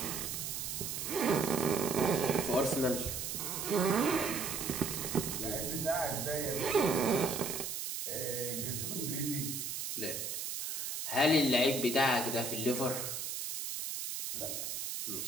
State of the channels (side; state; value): right; noise; hiss, 4 dB below the sound